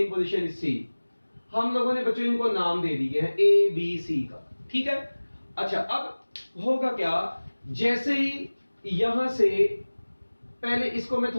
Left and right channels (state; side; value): inverted; both; correlation -1.00